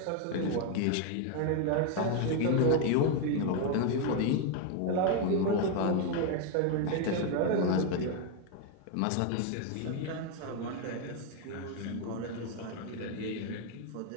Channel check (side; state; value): both; different; correlation 0.01